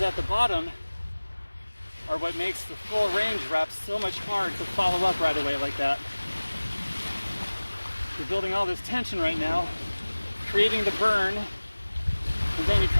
at the bottom are what makes the full range reps so much hard to follow up right away like that. You're building all this tension right now, creating the burn, and then you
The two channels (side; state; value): both; inverted; correlation -1.00